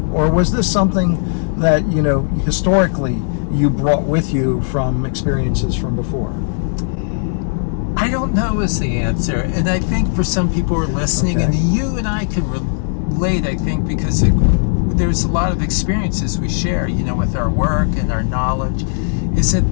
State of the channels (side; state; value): right; silent; 68 dB below the other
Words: Or was this something that, historically you brought with you from experiences from before? I don't know is the answer. And I think for some people who are listening, Okay. and you and I can relate, I think, because there's a lot of experiences we share, with our work and our knowledge, is at